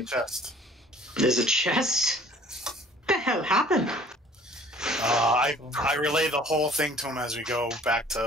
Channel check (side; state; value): both; normal; correlation 0.52